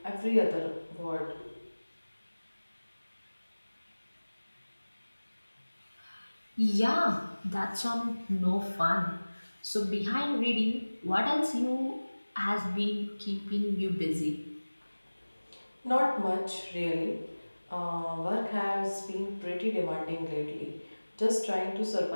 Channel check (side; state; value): both; inverted; correlation -1.00